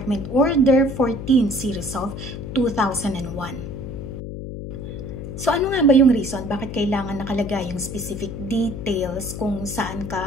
Order 14 Series of 2001. So ano nga ba yung reason bakit kailangan nakalagay yung specific details kung saan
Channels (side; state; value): left; noise; hum, 8 dB below the sound